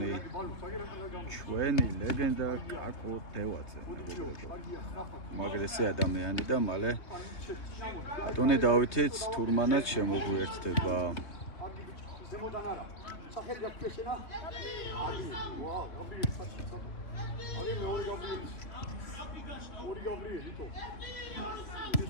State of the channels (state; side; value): late; right; 3.0 ms